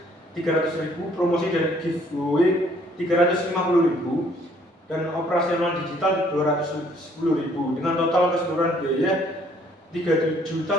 300.000, promosi dan giveaway 350.000, dan operasional digital 210.000, dengan total keseluruhan biaya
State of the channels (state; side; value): normal; both; correlation 0.62